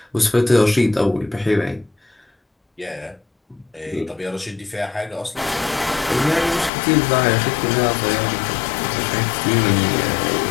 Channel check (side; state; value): right; drops out; at 6.7 s